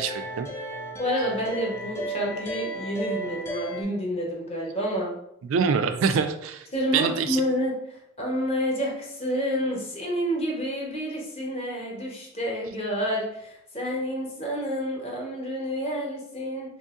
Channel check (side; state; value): both; normal; correlation 0.29